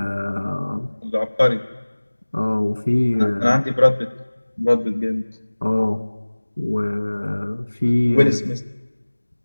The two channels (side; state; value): both; inverted; correlation -1.00